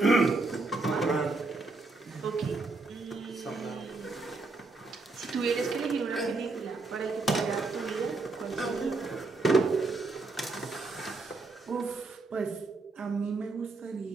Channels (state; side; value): quieter; left; 3.5 dB